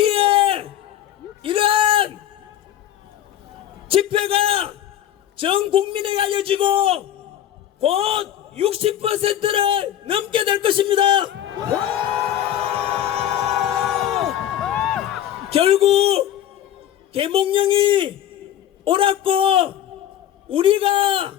이러한 집회가 전 국민에게 알려지고 곧 60%를 넘게 될 것입니다. 결국 계몽령이 옳았고 우리가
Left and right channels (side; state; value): right; quieter; 11.3 dB